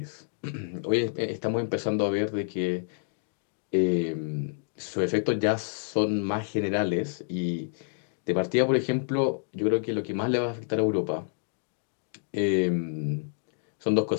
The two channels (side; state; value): right; silent; digital silence